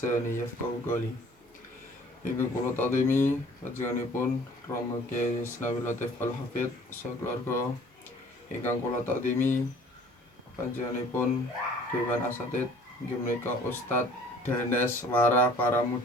yafqahu qawli. Ingkang kula takdimi panjenenganipun Rama Kyai Isnawi Latif Al-Hafidz sakeluarga. Ingkang kula takdimi panjenenganipun Dewan Asatidz inggih menika Ustadz Danes Wara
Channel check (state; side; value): normal; both; correlation 0.52